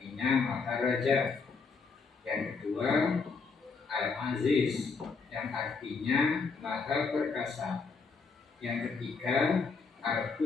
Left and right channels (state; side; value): quieter; right; 4.7 dB